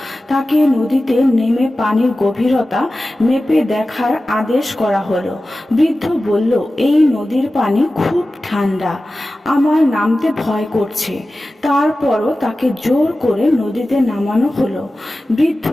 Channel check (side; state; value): both; normal; correlation 0.95